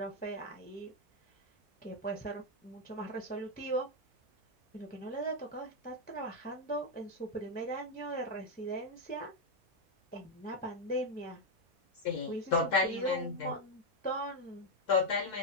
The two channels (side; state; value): both; normal; correlation 0.02